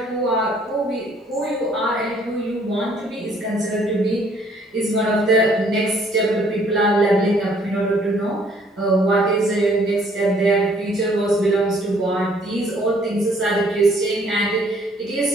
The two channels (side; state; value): both; normal; correlation 0.62